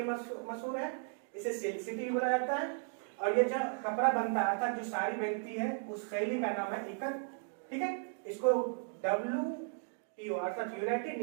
मशहूर है, इसे सिल्क सिटी भी बोला जाता है। और ये जो कपड़ा बनता है अर्थात जो साड़ी बनती है उस शैली का नाम है इकट, ठीक है। इसको WTO अर्थात यूनाइटेड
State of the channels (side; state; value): left; silent; 54 dB below the other